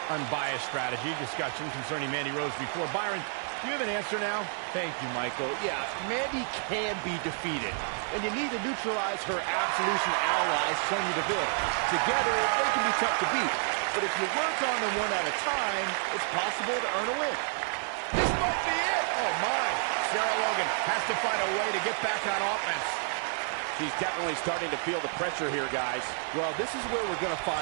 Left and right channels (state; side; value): silent; left; 58 dB below the other